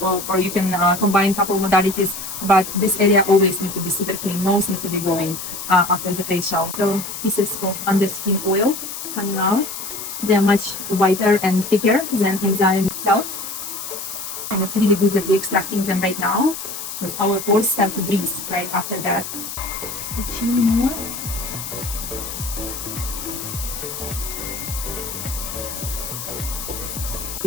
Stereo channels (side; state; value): left; noise; hiss, 8 dB below the sound